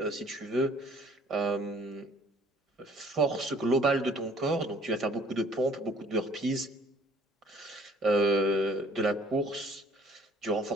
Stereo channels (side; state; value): both; normal; correlation 0.56